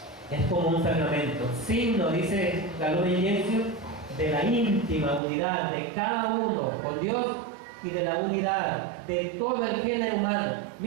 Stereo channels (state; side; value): drops out; left; at 5.2 s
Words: Es como un sacramento, signo, dice la Lumen Gentium, de la íntima unidad de cada uno con Dios y de la unidad de todo el género humano.